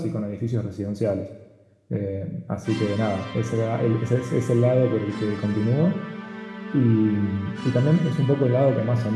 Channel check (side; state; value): both; identical; correlation 1.00